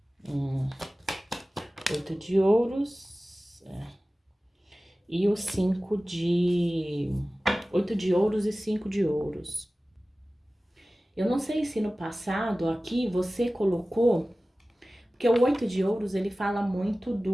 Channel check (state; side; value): normal; both; correlation 0.97